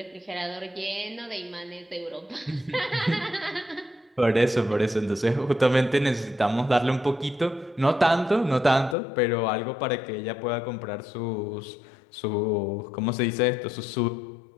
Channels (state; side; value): drops out; right; at 9.0 s